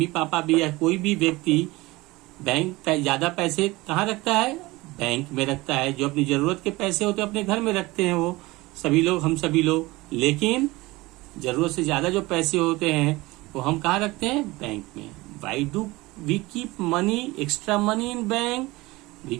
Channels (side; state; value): left; quieter; 21.1 dB